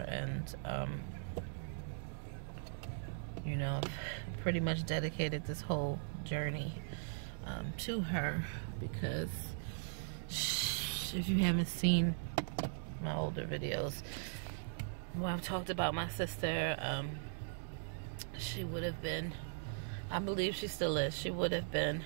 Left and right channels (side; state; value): left; silent; digital silence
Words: and you know, I've pretty much dedicated this whole journey to her, because if you haven't seen my older videos where I've talked about my sister, she would have been, I believe she still is, she would have been